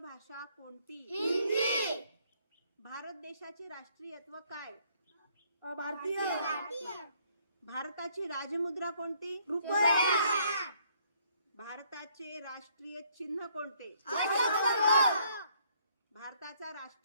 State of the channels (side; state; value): both; inverted; correlation -0.66